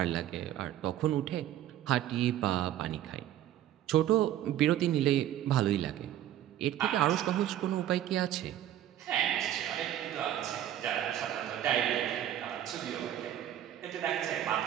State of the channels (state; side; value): quieter; left; 11.9 dB